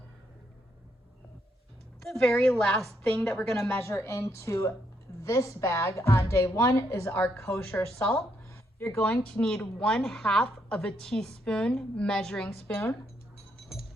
The very last thing that we're going to measure into this bag on day 1 is our kosher salt. You're going to need 1/2 teaspoon measuring spoon.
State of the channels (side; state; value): both; normal; correlation 0.76